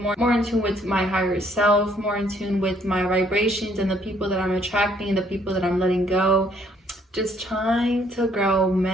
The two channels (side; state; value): both; normal; correlation 0.65